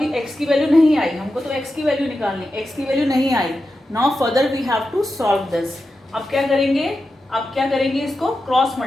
x की वैल्यू नहीं आई, हमको तो x की वैल्यू निकालनी, x की वैल्यू नहीं आई। Now further we have to solve this. अब क्या करेंगे, इसको क्रॉस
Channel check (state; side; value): normal; both; correlation 0.90